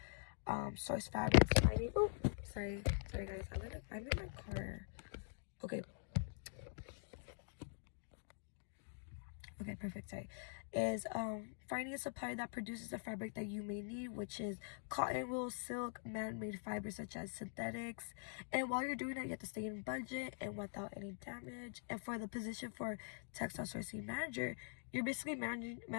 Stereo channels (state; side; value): silent; right; digital silence